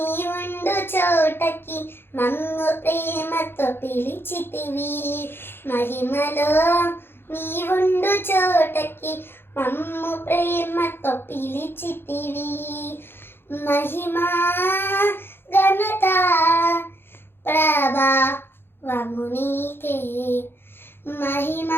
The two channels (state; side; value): late; right; 0.11 ms